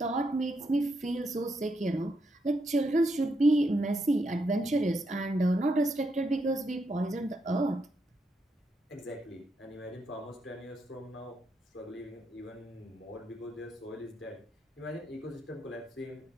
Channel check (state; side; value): normal; both; correlation 0.80